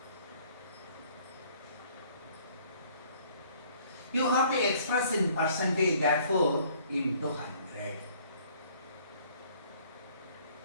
You have to express in percentage, therefore into 100.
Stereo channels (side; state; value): both; inverted; correlation -0.59